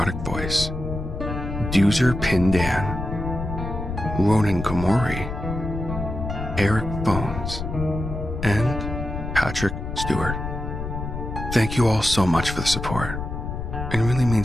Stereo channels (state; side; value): noise; left; rumble, 6 dB below the sound